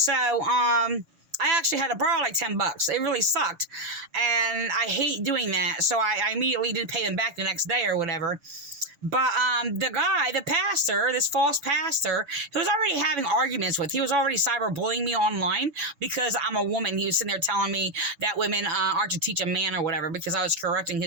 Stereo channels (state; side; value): late; left; 7.1 ms